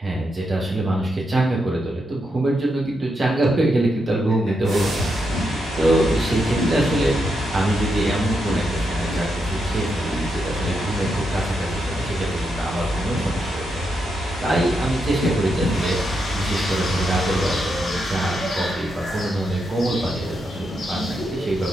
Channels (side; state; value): both; normal; correlation 0.83